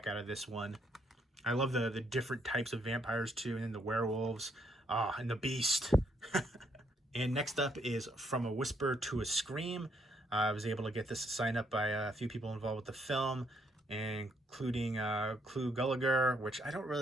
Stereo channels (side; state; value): both; normal; correlation 0.72